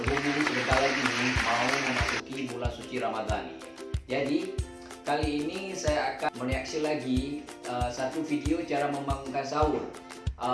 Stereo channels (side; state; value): both; identical; correlation 1.00